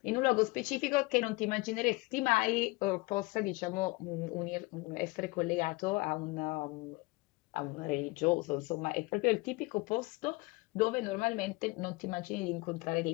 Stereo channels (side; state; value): right; quieter; 24.1 dB